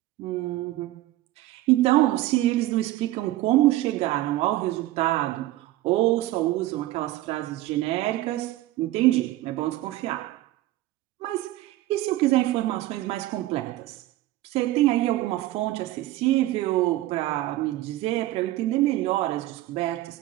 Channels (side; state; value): left; quieter; 16.1 dB